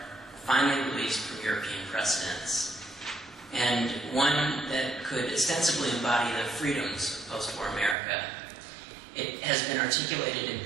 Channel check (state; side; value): drops out; left; at 8.0 s